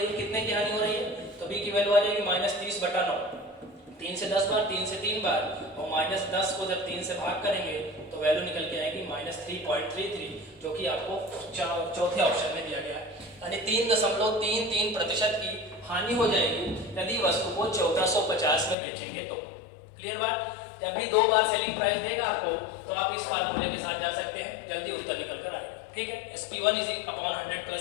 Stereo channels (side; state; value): right; drops out; at 18.8 s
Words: है, कितने की हानि हो रही है, तो बी की वैल्यू आ जाएगी -30/9, 3 से 10 बार, 3 से 3 बार, और -10 को जब 3 से भाग करेंगे तो वैल्यू निकल के आएगी -3.33, जो कि आपको चौथे ऑप्शन में दिया गया है, यानी 3.33% की हानि हो जाएगी यदि वस्तु को 1450 में बेचेंगे तो। क्लियर बात, जब भी दो बार सेलिंग प्राइस देगा आपको तो आप इस फार्मूले के साथ जा सकते हैं, जल्दी उत्तर निकल कर आएगा। ठीक है, SP1/100